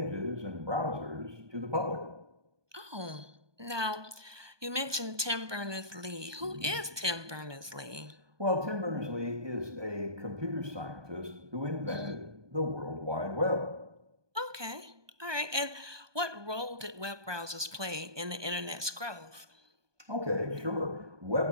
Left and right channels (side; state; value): left; late; 1.2 ms